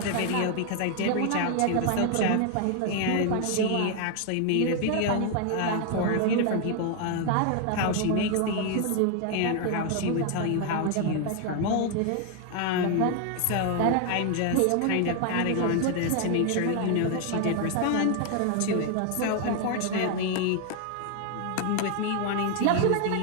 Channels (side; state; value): both; different; correlation 0.00